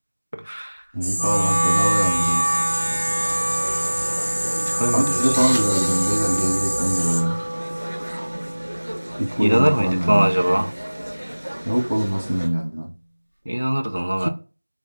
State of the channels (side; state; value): both; inverted; correlation -1.00